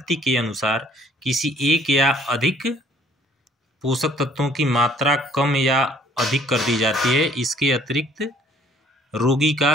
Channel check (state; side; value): normal; both; correlation 0.59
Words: के अनुसार किसी एक या अधिक पोषक तत्वों की मात्रा कम या अधिक कर दी जाती है। इसके अतिरिक्त रोगी